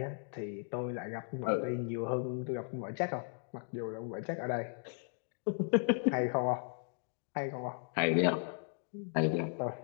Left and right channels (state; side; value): silent; right; 54 dB below the other